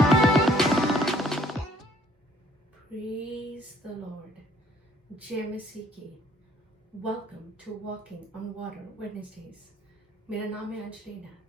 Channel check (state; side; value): normal; both; correlation 0.61